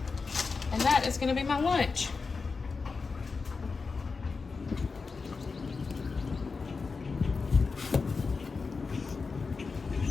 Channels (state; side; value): quieter; right; 4.6 dB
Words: And that is gonna be my lunch.